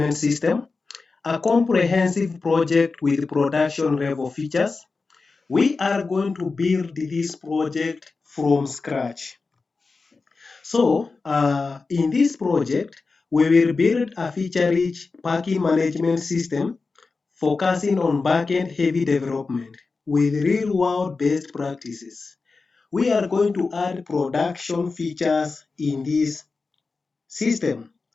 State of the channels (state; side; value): quieter; right; 4.2 dB